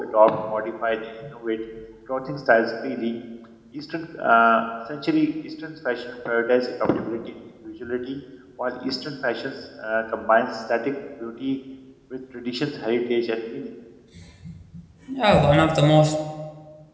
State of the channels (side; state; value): both; identical; correlation 1.00